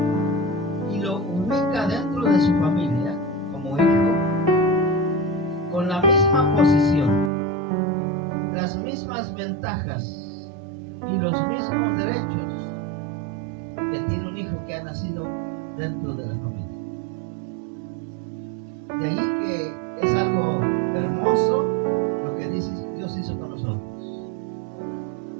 y lo ubica dentro de su familia como hijo, con la misma posición, las mismas ventajas y los mismos derechos que tiene un hijo que ha nacido dentro de la familia. De ahí que es algo hermoso lo que Dios hizo con nosotros.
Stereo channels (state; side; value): drops out; left; at 7.3 s